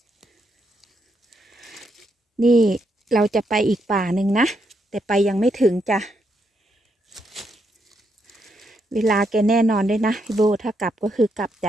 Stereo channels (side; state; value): both; normal; correlation 0.79